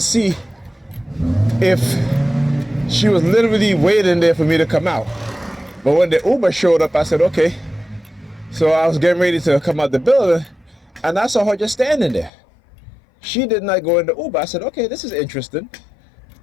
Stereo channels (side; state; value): right; drops out; at 12.3 s